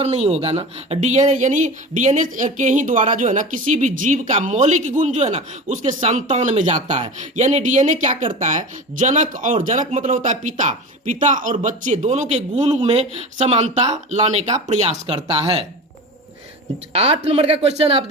नहीं होगा ना, डीएनए यानी डीएनए के ही द्वारा जो है ना किसी भी जीव का मौलिक गुण जो है ना उसके संतान में जाता है। यानी डीएनए क्या करता है, जनक मतलब होता है पिता और बच्चे दोनों के गुण में समानता लाने का प्रयास करता है। 8 नंबर का क्वेश्चन आप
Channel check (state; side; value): normal; both; correlation 0.31